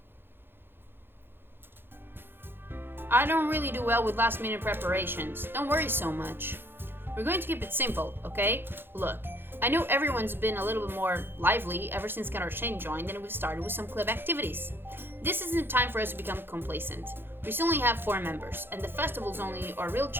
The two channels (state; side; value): late; left; 0.10 ms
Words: I don't really do well with last minute preparations. Don't worry so much. We're going to keep it simple, okay? Look, I know everyone's been a little bit more lively ever since Cata joined and we've started with some club activities. This isn't the time for us to become complacent. We still only have 4 members, and the festival's only our real